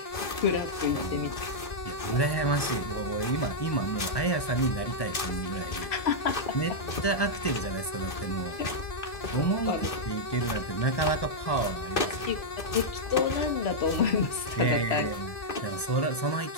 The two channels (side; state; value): right; late; 1.7 ms